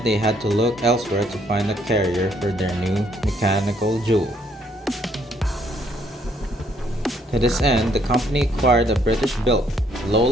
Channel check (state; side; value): normal; both; correlation 0.68